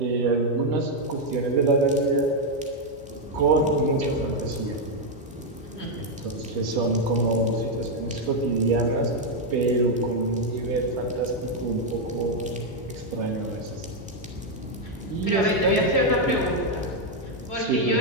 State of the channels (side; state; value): both; normal; correlation 0.01